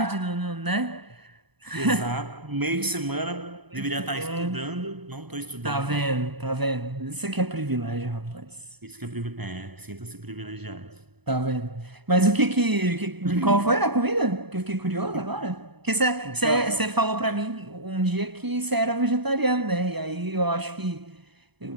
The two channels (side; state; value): left; late; 0.98 ms